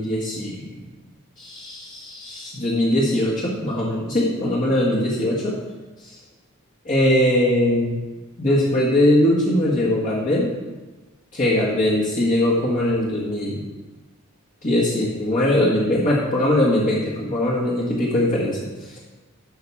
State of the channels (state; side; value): normal; both; correlation 0.53